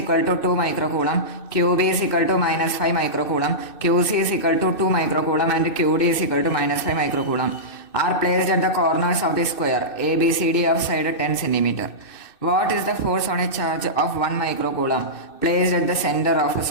to 2 microcoulomb, QB is equal to -5 microcoulomb, QC is equal to 2 microcoulomb and QD is equal to -5 microcoulomb are placed at the corners of the square ABCD of side 10 centimeter. What is the force on a charge of 1 microcoulomb placed at the center of a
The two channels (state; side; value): late; right; 2.6 ms